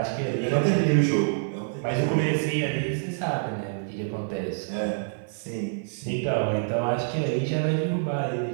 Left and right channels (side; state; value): left; silent; digital silence